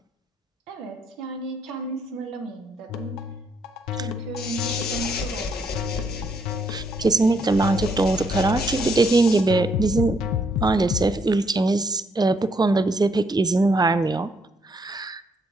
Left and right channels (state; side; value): normal; both; correlation 0.71